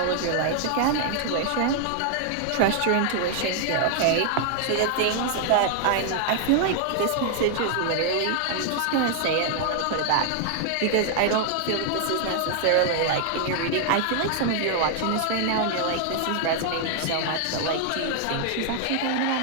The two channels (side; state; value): both; different; correlation 0.00